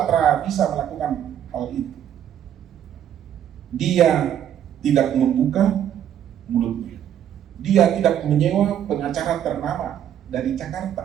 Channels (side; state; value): left; quieter; 10.1 dB